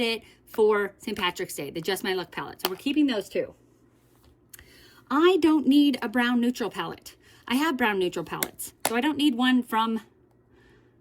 for St. Patrick's Day, the Just My Look palette. So we're keeping those two. I don't need a brown neutral palette. I have brown neutral palettes, so I don't need one from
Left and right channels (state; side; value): identical; both; correlation 1.00